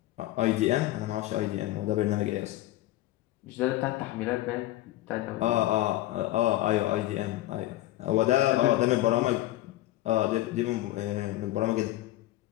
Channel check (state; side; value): quieter; right; 15.8 dB